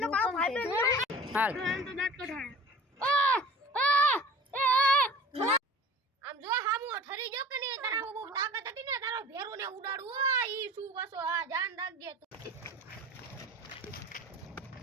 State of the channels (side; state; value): both; normal; correlation 0.43